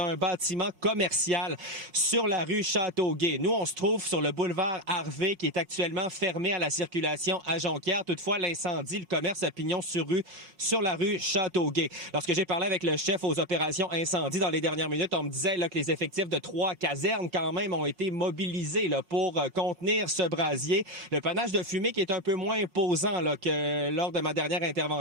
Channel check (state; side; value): late; left; 5.7 ms